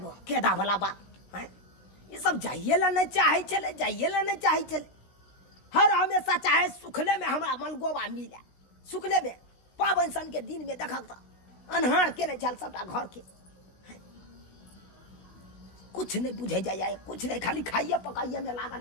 केदा वाला बात हैं ई सब जाइए ला नहीं चाहे चले जाइए ला नहीं चाहे चले हर हमेशा चाहे सुखले में हमरा मन गोबा मिले सुखले में पावन सन के दिन में देखक तो अनहार के नहीं चल सबटा घर के कुछ नहीं बुझे जाए कुछ नहीं खाली खाइए पकाइए में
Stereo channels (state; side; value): late; right; 16 ms